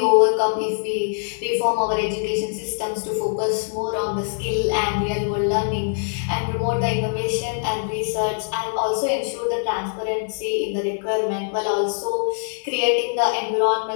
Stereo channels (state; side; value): silent; right; 64 dB below the other